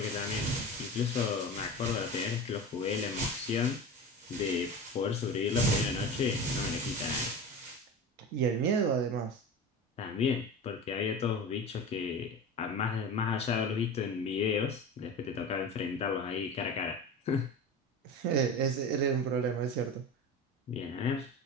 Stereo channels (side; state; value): both; normal; correlation 0.30